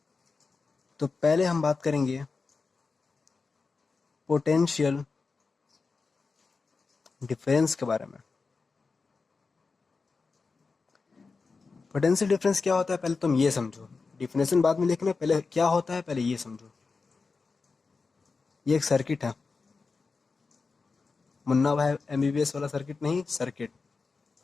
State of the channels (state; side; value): quieter; right; 4.4 dB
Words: तो पहले हम बात करेंगे पोटेंशियल डिफरेंस के बारे में। पोटेंशियल डिफरेंस क्या होता है पहले तुम ये समझो। डिफिनेशन बाद में लिखना, पहले क्या होता है पहले ये समझो। ये एक सर्किट है, मुन्ना भाई एमबीबीएस वाला सर्किट नहीं, सर्किट।